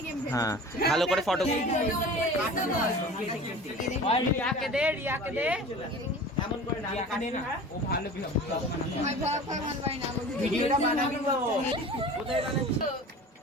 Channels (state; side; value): normal; both; correlation 0.39